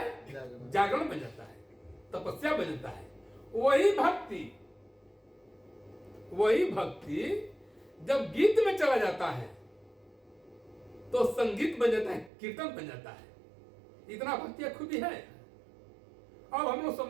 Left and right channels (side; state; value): left; drops out; at 12.3 s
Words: जागरण बन जाता है, तपस्या बन जाता है। वही भक्ति जब गीत में चला जाता है तो संगीत बन जाता है, कीर्तन बन जाता है। इतना भक्ति खूबी है। अब हम लोग